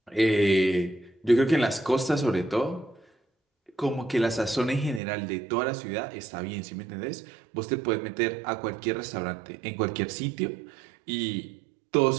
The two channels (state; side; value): drops out; left; at 5.0 s